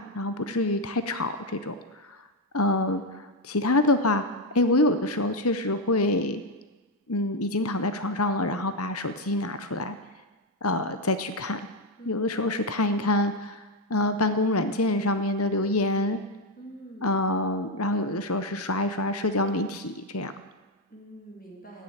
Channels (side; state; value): both; normal; correlation 0.06